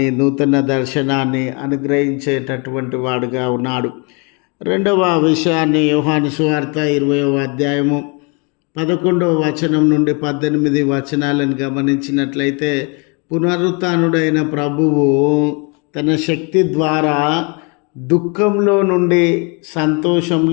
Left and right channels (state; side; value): quieter; right; 33.0 dB